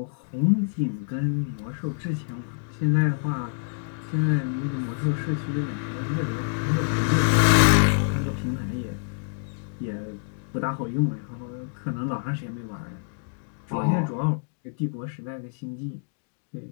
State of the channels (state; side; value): silent; right; digital silence